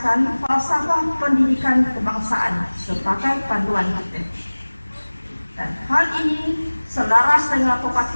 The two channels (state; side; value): inverted; both; correlation -1.00